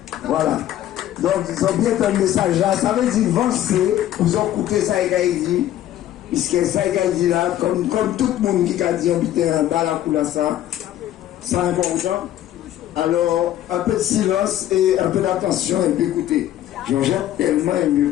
Voilà. Donc, ils ont bien un message là. Ça veut dire avancer. Vous ont écouté ça et dit. Puisque ça et dit là, comme tout le monde qui a dit habiter en bas la couleur ça, c'est important. Alors, un peu de silence et un peu d'attention et puis écoutez. Jean-Jacques tellement aimé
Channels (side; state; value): right; quieter; 12.6 dB